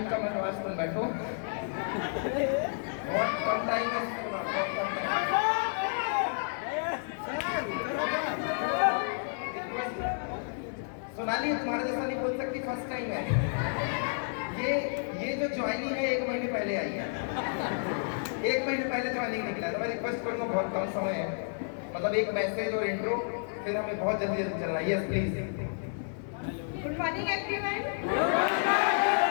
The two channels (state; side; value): silent; right; 57 dB below the other